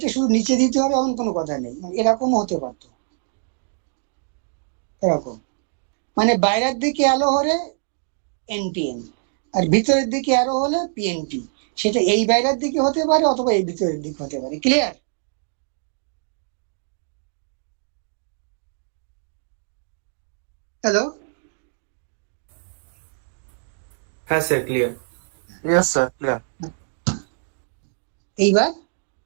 শুধু নিচে দিতে হবে এমন কোনো কথা নেই, মানে এরকমও হতে পারতো, এরকম। মানে বাইরের দিকে আলো হলে এনপিএন, আর ভিতরের দিকে আলো হলে পিএনপি। সেটা এই বাইরের দিকে হতে পারে অথবা এই ভিতরের দিকে হতে পারে। ক্লিয়ার? হ্যালো? হ্যাঁ sir, clear. Yes, sir. Clear. এইবার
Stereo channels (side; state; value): left; silent; digital silence